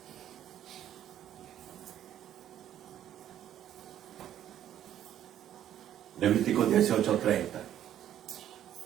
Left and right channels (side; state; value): left; quieter; 11.1 dB